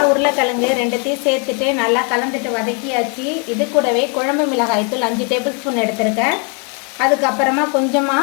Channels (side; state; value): right; quieter; 37.1 dB